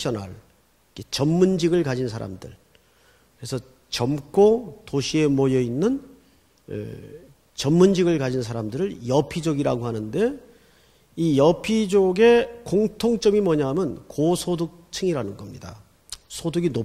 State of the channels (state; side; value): identical; both; correlation 1.00